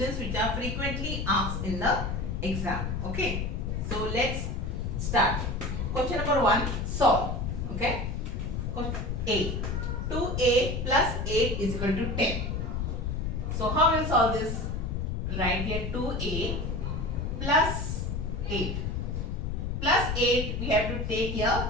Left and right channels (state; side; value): noise; left; rumble, 2 dB below the sound